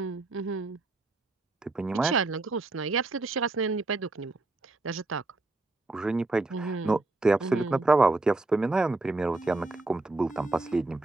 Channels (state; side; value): quieter; left; 3.1 dB